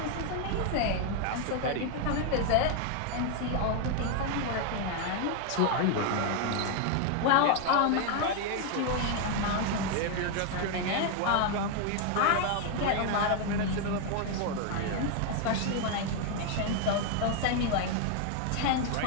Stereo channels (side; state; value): both; different; correlation 0.00